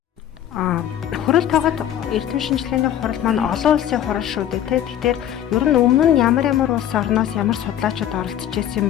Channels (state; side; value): quieter; right; 10.9 dB